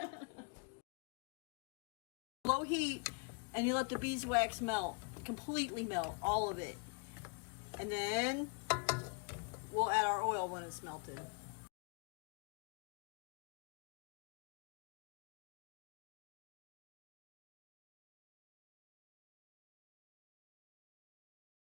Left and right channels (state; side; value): quieter; right; 33.6 dB